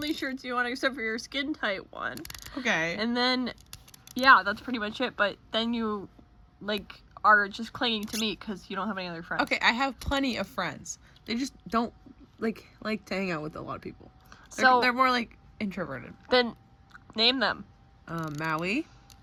shirts you want except for your skin tight one. Okay. And then, yeah, that's pretty much it. But then you, are just clinging to me because you don't have any other friends. Okay, I have plenty of friends. They just don't like to hang out with a lot of people. They're more introverted. Then name them. Maui,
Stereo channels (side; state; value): both; identical; correlation 1.00